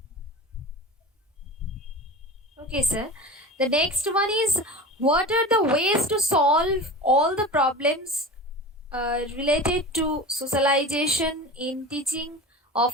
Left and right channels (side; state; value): both; normal; correlation 0.31